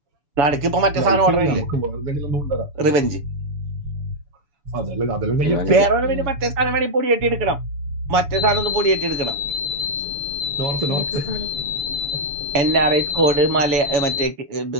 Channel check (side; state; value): left; late; 7.0 ms